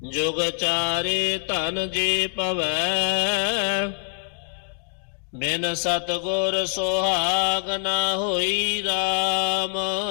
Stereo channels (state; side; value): silent; right; digital silence